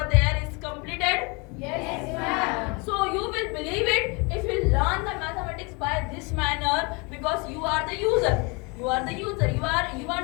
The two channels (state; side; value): quieter; right; 29.7 dB